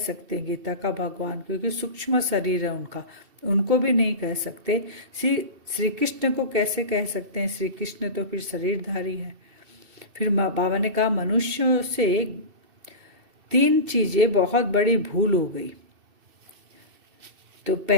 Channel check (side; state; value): left; late; 2.7 ms